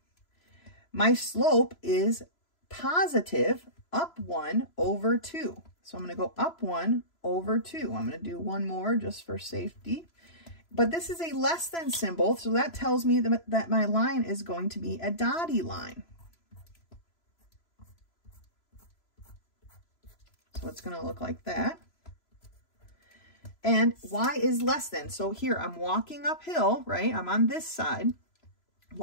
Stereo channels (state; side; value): late; right; 3.0 ms